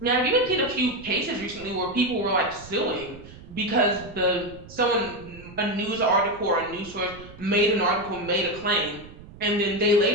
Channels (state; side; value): noise; right; rumble, 18 dB below the sound